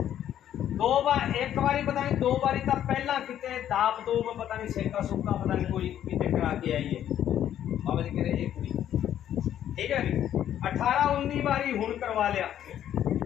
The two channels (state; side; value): quieter; right; 10.8 dB